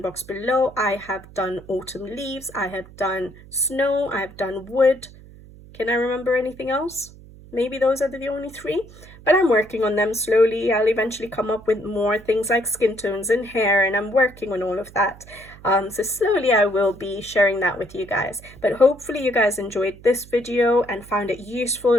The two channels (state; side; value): noise; right; hum, 20 dB below the sound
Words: box below. I have done autumn leaves, I have done snow, I have done wood. Can I remember anything else? Maybe those are the only three, but I'm working on them slowly. I'll eventually come up with more things like skin tones and hair, and I'm working on all of that. So slowly I will be sharing that with you guys. But hopefully you guys enjoyed this video and found it useful